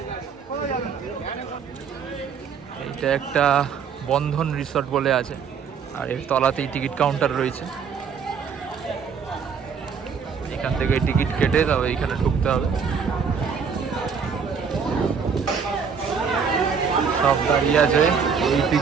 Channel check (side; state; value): left; quieter; 6.3 dB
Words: এইটা একটা বন্ধন রিসর্ট বলে আছে, আর এর তলাতেই টিকিট কাউন্টার রয়েছে। এখান থেকে টিকিট কেটে তবে এইখানে ঢুকতে হবে। সব দাঁড়িয়ে আছে, ওই